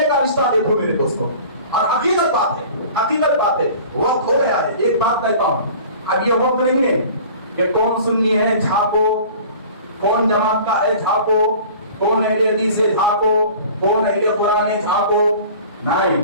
کا رشتہ دیکھو میرے دوستوں، اور حقیقت بات ہے، حقیقت بات ہے، وقت ہو گیا ہے. ایک بات کہتا ہوں، اب یہ وقت نہیں ہے کہ کون سنی ہے جھاکو، کون جماعت کا ہے جھاکو، کون اہل حدیث ہے جھاکو، کون اہل قرآن ہے جھاکو.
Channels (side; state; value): both; inverted; correlation -0.44